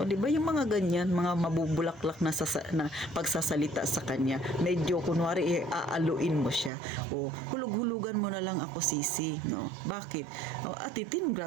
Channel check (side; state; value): left; drops out; at 6.7 s